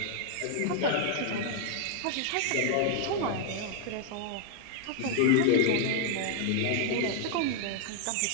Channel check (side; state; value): both; different; correlation 0.00